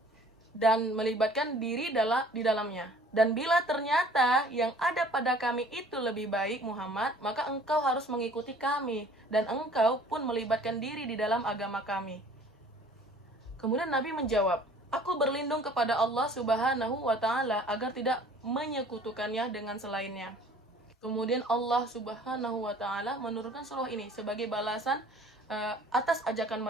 dan melibatkan diri di dalamnya. Dan bila ternyata yang ada pada kami itu lebih baik, Muhammad, maka engkau harus mengikuti kami, dan engkau pun melibatkan diri di dalam agama kami. Kemudian Nabi menjawab, aku berlindung kepada Allah Subhanahu wa Ta'ala agar tidak menyekutukannya dengan selainnya. Kemudian Allah Subhanahu wa Ta'ala menurunkan surah ini sebagai balasan atas ajakan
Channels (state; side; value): normal; both; correlation 0.51